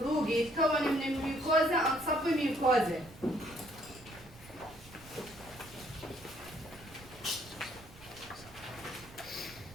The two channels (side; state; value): right; noise; rumble, 20 dB below the sound